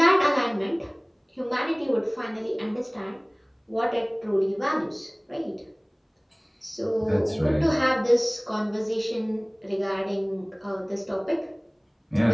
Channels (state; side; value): identical; both; correlation 1.00